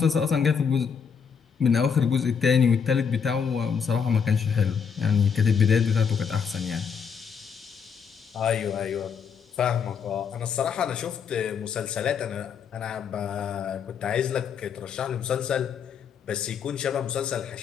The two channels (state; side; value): quieter; right; 6.7 dB